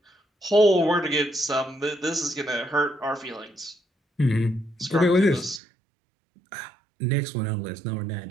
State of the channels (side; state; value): left; drops out; at 5.6 s